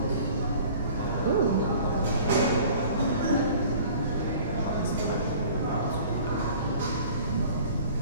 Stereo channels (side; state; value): both; inverted; correlation -0.47